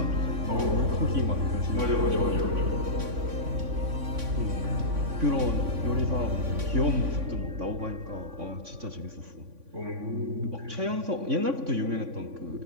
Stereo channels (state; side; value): late; left; 3.5 ms